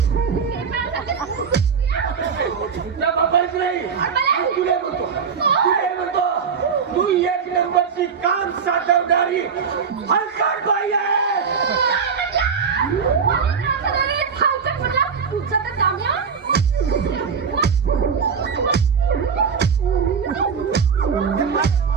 तू एक नंबरची काम साधवणारी हलकट बाई आहे.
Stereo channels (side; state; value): left; quieter; 6.2 dB